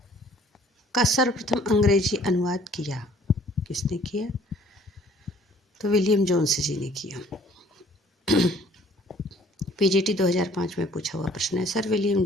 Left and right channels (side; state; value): both; normal; correlation 0.57